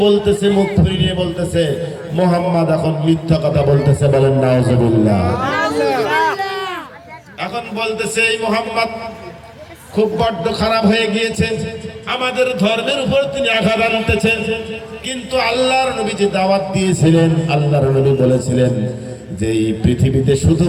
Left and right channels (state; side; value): identical; both; correlation 1.00